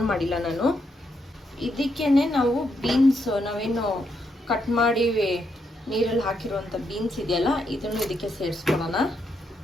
ಮಾಡಿಲ್ಲ ನಾನು. ಇದಕ್ಕೇನೆ ನಾವು ಬೀನ್ಸ್, ನಾವೇನು ಕಟ್ ಮಾಡಿ ನೀರಲ್ಲಿ ಹಾಕಿರುವಂಥ ಬೀನ್ಸ್ ಇದೆಯಲ್ಲ, ಇದನ್ನು ಇದಕ್ಕೆ ಸೇರಿಸ್ಕೊಳ್ಳೋಣ.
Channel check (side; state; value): both; normal; correlation 0.79